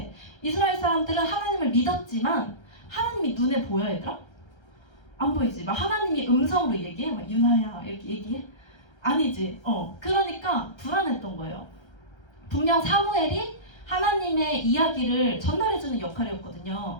이스라엘 사람들은 하나님을 믿었지만 하나님이 눈에 보여, 얘들아? 안 보이지? 막 하나님이 음성으로 얘기해? 막 유나야 이렇게 얘기해? 아니지. 그러니까 불안했던 거예요. 분명 사무엘이 하나님의 이야기를 전달해주는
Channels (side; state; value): right; late; 1.3 ms